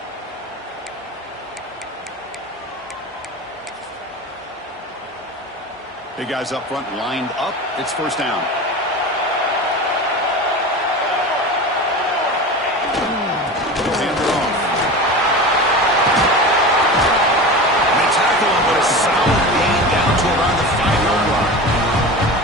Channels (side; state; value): both; normal; correlation 0.30